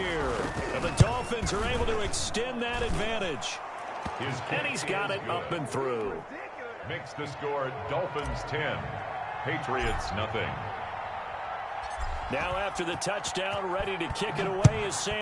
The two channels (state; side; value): identical; both; correlation 1.00